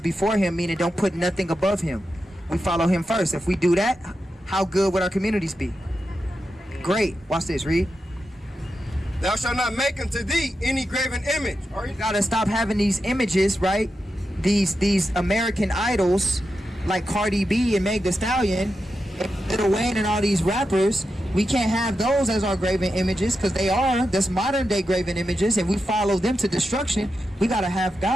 him, meaning don't put nothing above him. We follow him first. If we do that, how good would our communities be? Great. Watch this. Read. Thou shalt not make unto thee any graven image. You got to stop having these images, right? These American idols like Cardi B and Meg Thee Stallion, Lil Wayne and all these rappers. We can't have those as our graven images, because that's modern day graven images, and we follow them to destruction. We got to have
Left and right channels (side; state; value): both; normal; correlation 0.89